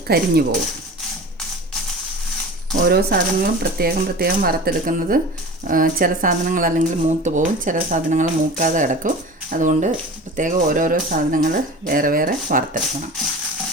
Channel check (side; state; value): both; normal; correlation 0.36